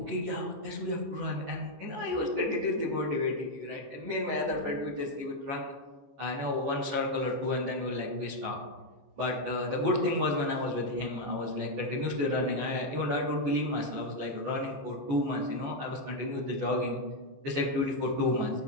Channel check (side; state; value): left; late; 14 ms